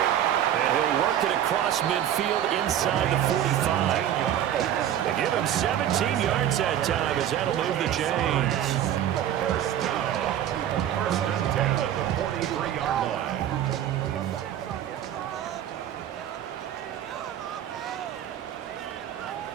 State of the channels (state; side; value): quieter; left; 10.8 dB